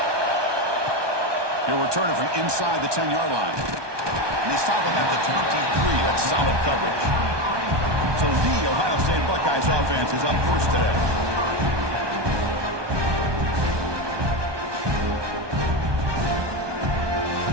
He'll return it from inside the 10-yard line. And they stop him at the 23. That's solid coverage. So the Ohio State Buckeyes offense is up first today.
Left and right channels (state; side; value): late; left; 1.2 ms